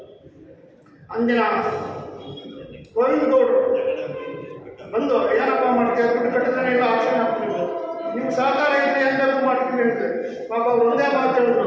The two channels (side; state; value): both; identical; correlation 1.00